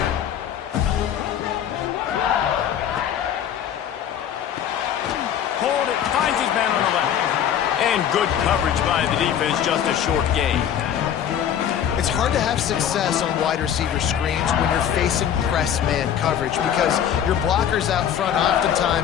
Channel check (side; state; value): right; quieter; 9.4 dB